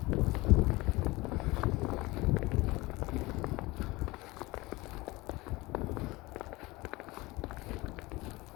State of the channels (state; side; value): quieter; right; 21.7 dB